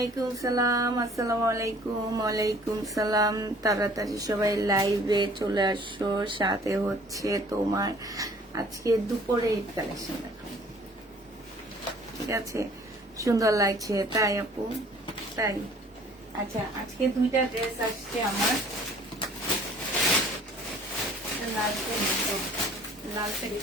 সালাম। আসসালামু আলাইকুম। ওয়ালাইকুম সালাম। তাড়াতাড়ি সবাই লাইভে চলে আসো। সাথে হচ্ছে তোমার আজকে দুপুরে ঈদ কালেকশন দেখাবো, ঠিক আছে? সুন্দর লাগছে তাই আপু? তাই, আচ্ছা। আজকে দুইটা ড্রেস আসছে আমার। লাল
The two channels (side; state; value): both; normal; correlation 0.53